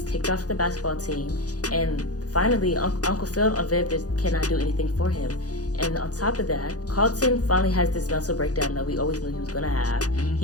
kicked off the basketball team, and finally Uncle Phil and Viv cannot do anything for him. And on top of that, Carlton finally has this mental breakdown that we always knew he was going to have. Mm-hmm.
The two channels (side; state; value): right; late; 0.67 ms